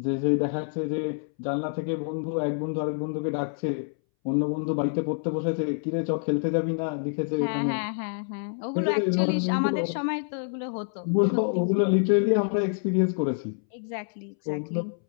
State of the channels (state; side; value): silent; right; 60 dB below the other